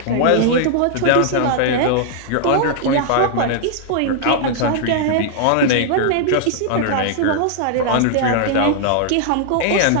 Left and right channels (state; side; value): different; both; correlation -0.01